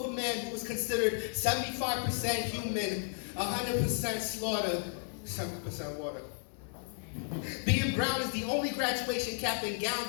a man who is considered 75% human, 100% slaughter, 7% water. Being brown is the only graduation cap and gown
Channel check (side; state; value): right; silent; 55 dB below the other